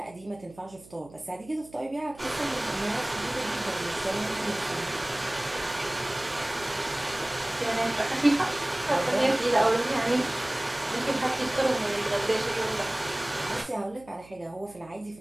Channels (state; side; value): noise; right; hum, 22 dB below the sound